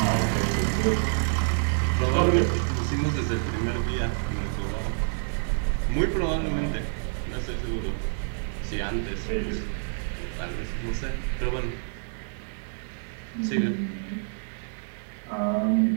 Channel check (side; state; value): left; silent; digital silence